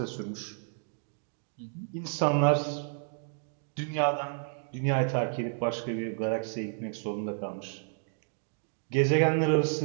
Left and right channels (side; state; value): left; silent; 57 dB below the other